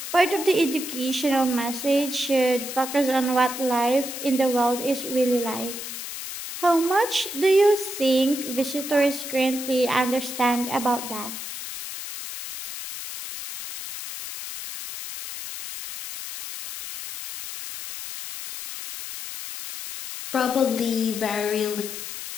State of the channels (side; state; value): left; noise; hiss, 8 dB below the sound